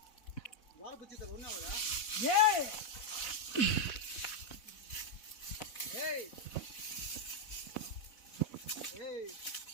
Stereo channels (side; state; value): right; late; 4.0 ms